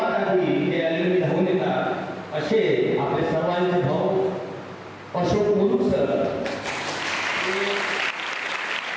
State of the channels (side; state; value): both; identical; correlation 1.00